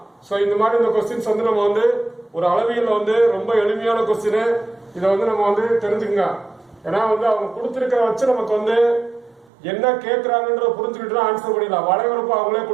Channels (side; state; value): left; drops out; at 9.5 s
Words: ஸோ இந்த மாதிரி இந்த கொஸ்டின்ஸ் வந்து நம்ம வந்து ஒரு அளவியல்ல வந்து ரொம்ப எளிமையான கொஸ்டின். இதை வந்து நம்ம வந்து தெரிஞ்சுக்கங்க. ஏன்னா வந்து அவங்க கொடுத்திருக்கிற வச்சு நமக்கு வந்து என்ன கேட்கறாங்கன்ற புரிஞ்சுக்கிட்டு ஆன்சர் பண்ணிடலாம். வளைவரப்பு அவங்களே